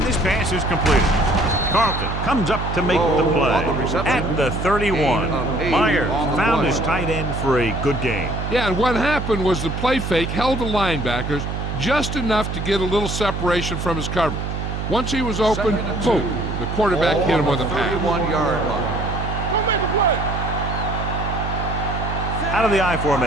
this pass is completed. Carlton comes up to make the play at the 31. Myers found his tight end for a good game. Yeah, and what happened was the play fake held the linebackers just enough to get a little separation from his coverage. Once he was open, boom, the quarterback hit him with a pass. 31-yard line. Go make a play. Out of the I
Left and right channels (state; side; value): noise; right; hum, 4 dB below the sound